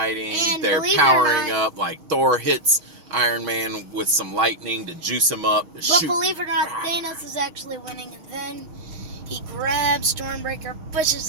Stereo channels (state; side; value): late; left; 6.3 ms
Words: up. Like Thor hits Iron Man with some lightning to juice him up. But believe it or not, Thanos is actually winning, and then he grabs Stormbreaker,